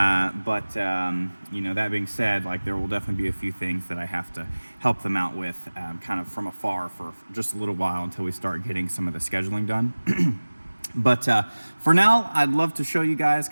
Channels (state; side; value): inverted; both; correlation -1.00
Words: that being said, like, there will definitely be a few things that I have to help them out with kind of from afar for just a little while until we start getting some of the scheduling done. But for now, I'd love to show you guys